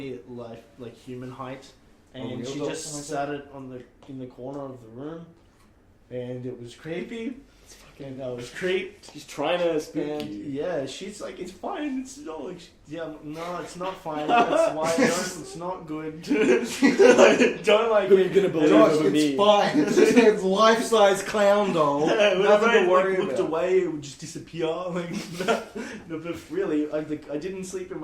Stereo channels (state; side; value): identical; both; correlation 1.00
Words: like human height, and real she doll? just sat it in the corner of the room, and it was creepy. And I was creeped. She's trying to spook And you. yeah, she's like, it's fine. It's not like, no, it's not fine. That's why it's not good. Don't like Who are it. you gonna believe Josh, over it's me? fine. It's just a life-size clown doll. Whenever Nothing I to worry looked about. away, it would just disappear. Like, no, but really, I didn't sleep in